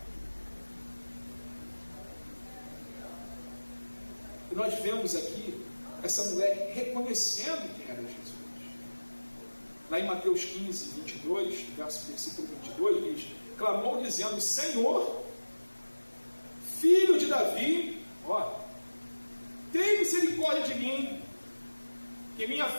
nós vemos aqui essa mulher reconhecendo quem era Jesus. Lá em Mateus 15, 22, versículo 22, diz: clamou dizendo: Senhor, filho de Davi, tem misericórdia de mim, que minha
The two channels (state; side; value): inverted; both; correlation -1.00